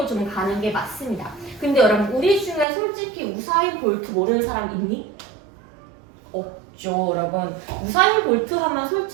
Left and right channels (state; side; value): drops out; left; at 2.7 s